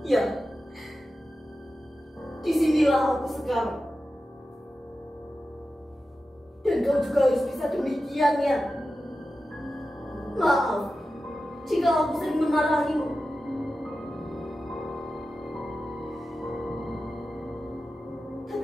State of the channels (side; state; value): both; normal; correlation 0.93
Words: ya, disinilah aku sekarang. Dan kau juga harus bisa demikian ya. Maaf jika aku sering memarahimu.